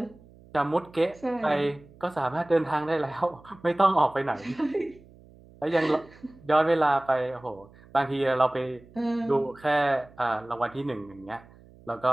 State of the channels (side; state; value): right; noise; hum, 24 dB below the sound